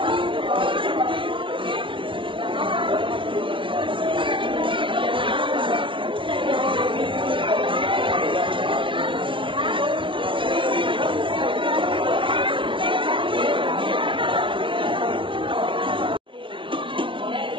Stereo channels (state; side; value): late; left; 0.25 ms